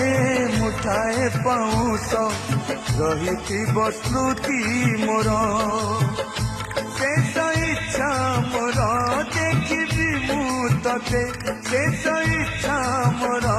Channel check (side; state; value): both; identical; correlation 1.00